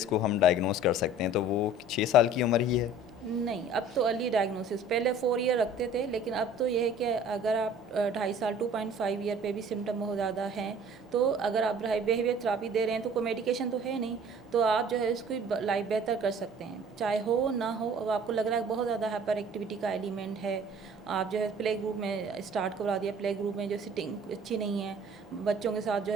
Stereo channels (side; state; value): both; normal; correlation 0.49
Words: हम डायग्नोस कर सकते हैं, तो वो 6 साल की उम्र ही है? नहीं, अब तो अर्ली डायग्नोसिस, पहले 4 ईयर रखते थे, लेकिन अब तो यह है कि अगर आप 2.5 साल 2.5 ईयर पे भी सिम्टम बहुत ज़्यादा हैं, तो अगर आप बिहेवियर थेरापी दे रहे हैं तो कोई मेडिकेशन तो है नहीं, तो आप जो है उसकी लाइफ बेहतर कर सकते हैं, चाहे हो ना हो। अब आपको लग रहा है बहुत ज़्यादा हाइपर एक्टिविटी का एलिमेंट है, आप जो है प्ले ग्रुप में स्टार्ट करवा दिया, प्ले ग्रुप में जो सिटिंग अच्छी नहीं है, बच्चों के साथ जो